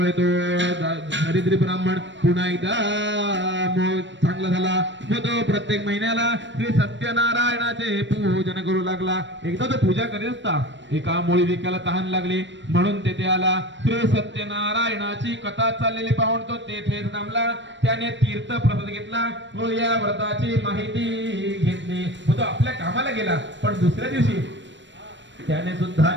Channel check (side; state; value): left; late; 0.53 ms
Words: तो दरिद्री ब्राह्मण पुन्हा एकदा चांगला झाला व तो प्रत्येक महिन्याला श्री सत्यनारायणाचे पूजन करू लागला. एकदा तो पूजा करीत असता एका मोळी विकायला तहान लागली म्हणून तेथे आला. श्री सत्यनारायणाची कथा चाललेली पाहून तो तेथेच थांबला. त्याने तीर्थ प्रसाद घेतला व या व्रताची माहिती घेतली व तो आपल्या कामाला गेला. पण दुसऱ्या दिवशी त्याने सुद्धा